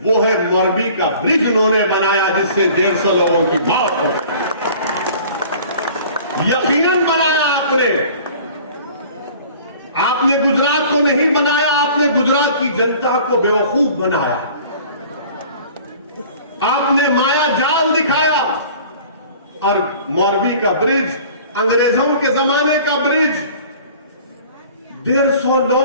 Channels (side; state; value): both; inverted; correlation -0.47